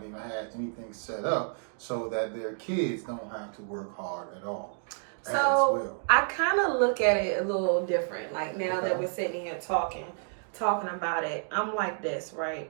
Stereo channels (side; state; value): left; silent; 58 dB below the other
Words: even had anything set up so that their kids don't have to work hard at all. So I kind of look at it a little different. Like now that we're sitting here talking about it, I'm like this,